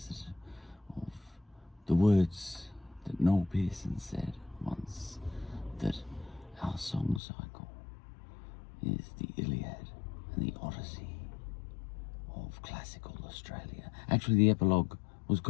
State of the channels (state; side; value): drops out; right; at 7.2 s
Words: of the words that Noel Pearson said once, that our song cycle is the Iliad and the Odyssey of classical Australia. Actually, the epilogue was